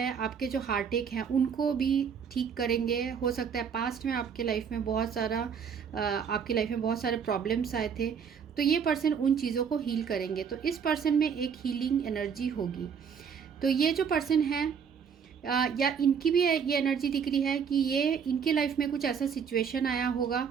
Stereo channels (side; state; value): left; quieter; 6.9 dB